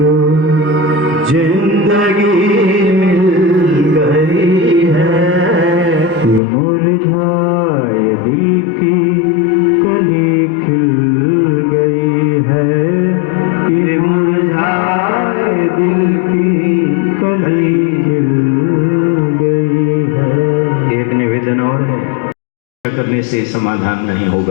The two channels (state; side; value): drops out; right; at 6.4 s